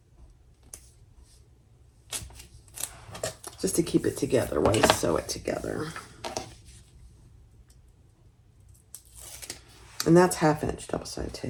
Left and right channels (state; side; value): identical; both; correlation 1.00